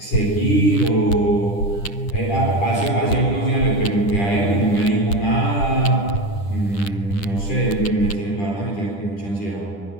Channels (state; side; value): late; right; 10 ms